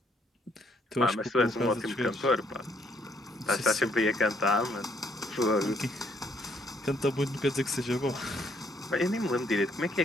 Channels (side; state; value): both; normal; correlation 0.69